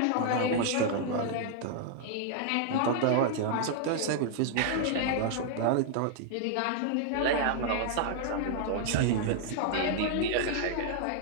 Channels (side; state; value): both; different; correlation -0.01